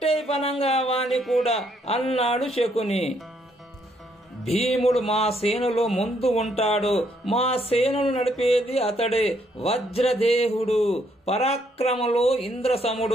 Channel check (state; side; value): normal; both; correlation 0.71